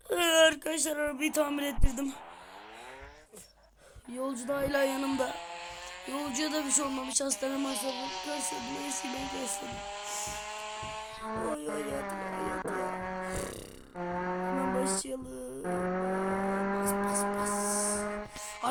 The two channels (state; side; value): identical; both; correlation 1.00